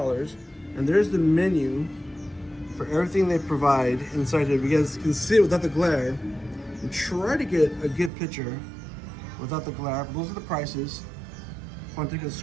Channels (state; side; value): drops out; left; at 8.1 s